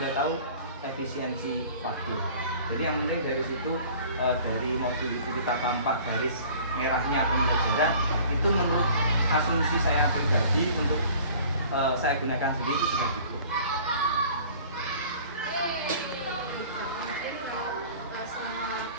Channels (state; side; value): inverted; both; correlation -0.48